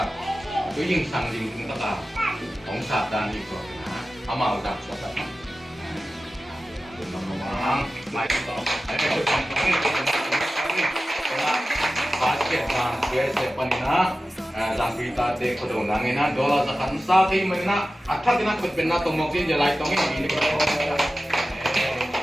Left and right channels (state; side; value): normal; both; correlation 0.95